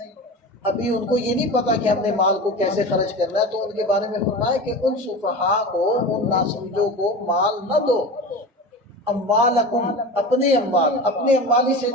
ابھی ان کو یہ نہیں پتا کہ ہم نے مال کو کیسے خرچ کرنا ہے، تو ان کے بارے میں فرمایا کہ ان سفہاء کو، ان ناسمجھوں کو مال نہ دو، اموالکم، اپنے اموال، اپنے اموال اس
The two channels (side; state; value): both; normal; correlation 0.30